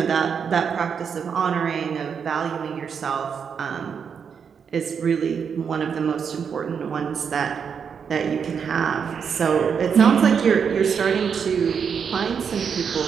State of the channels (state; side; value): quieter; left; 6.8 dB